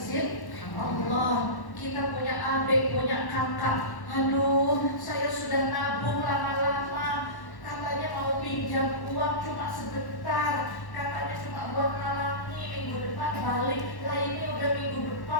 Allah. Kita punya adik, punya kakak, aduh saya sudah nabung lama-lama, katanya mau pinjam uang cuma sebentar, katanya cuma buat ngalangi, minggu depan balik. Lah ini udah minggu depan,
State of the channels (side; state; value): right; late; 1.1 ms